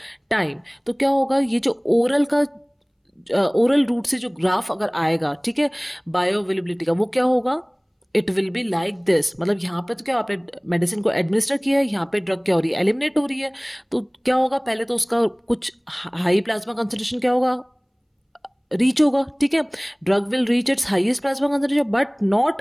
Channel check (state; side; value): identical; both; correlation 1.00